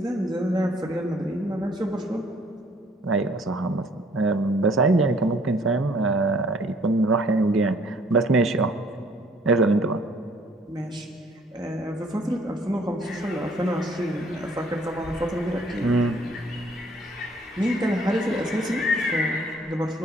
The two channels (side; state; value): both; normal; correlation 0.60